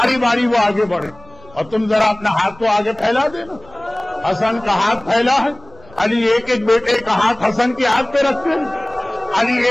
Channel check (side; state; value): left; noise; rumble, 25 dB below the sound